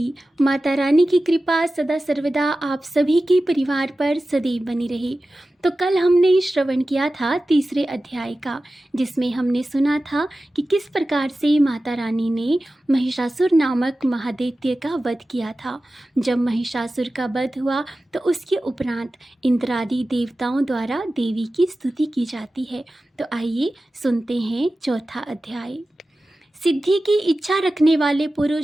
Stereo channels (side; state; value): both; normal; correlation 0.95